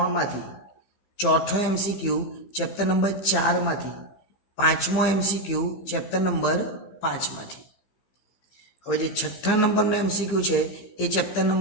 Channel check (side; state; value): right; late; 15 ms